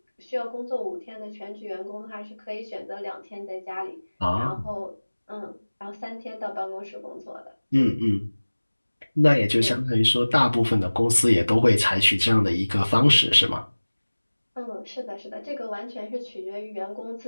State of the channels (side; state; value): both; inverted; correlation -1.00